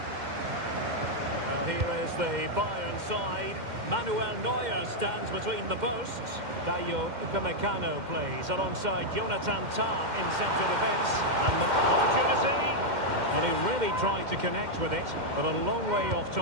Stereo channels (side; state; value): left; late; 2.1 ms